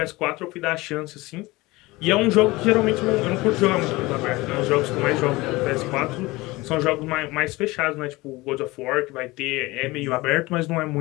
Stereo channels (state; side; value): quieter; right; 21.3 dB